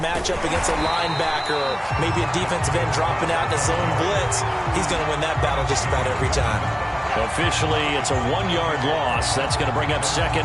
matchup against a linebacker or maybe a defensive end dropping out in a zone blitz, he's going to win that battle just about every time. Officially, it's a 1-yard loss. That's going to bring up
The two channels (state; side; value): identical; both; correlation 1.00